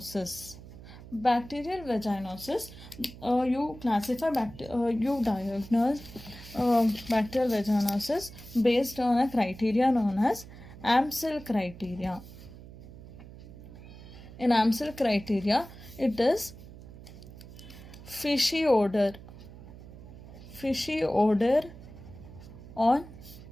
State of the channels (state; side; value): noise; right; hum, 16 dB below the sound